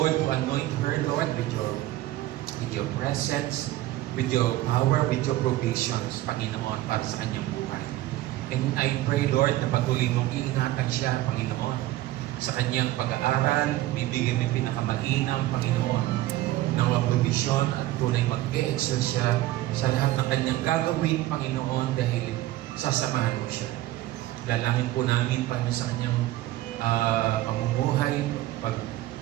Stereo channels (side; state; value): left; quieter; 15.9 dB